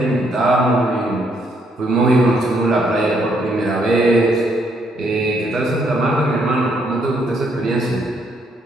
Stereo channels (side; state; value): both; normal; correlation 0.72